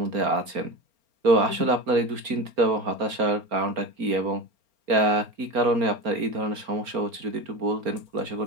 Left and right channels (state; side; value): late; left; 4.3 ms